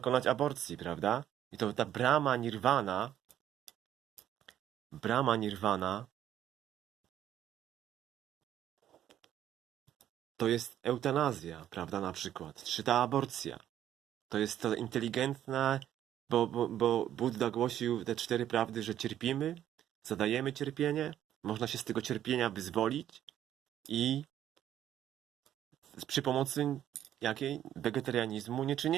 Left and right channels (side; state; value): left; quieter; 11.3 dB